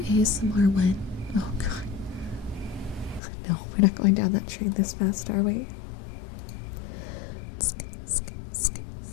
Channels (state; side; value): drops out; right; at 3.2 s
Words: ASMR when? Oh god. No, we're not going down that train this fast, are we?